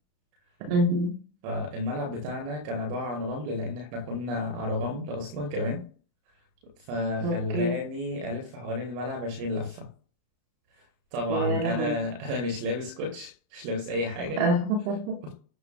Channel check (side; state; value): left; late; 33 ms